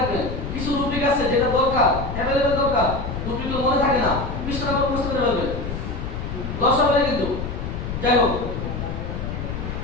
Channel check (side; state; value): left; noise; rumble, 5 dB below the sound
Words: কিছু রুটিক আছে যেটা দরকার, অ্যাভেলেবেল দরকার, রুটিকগুলো মনে থাকে না, কৃষ্ণ নাম্বার বুঝতে করে ফেলবেন, 10 হবে কিন্তু। যাই হোক,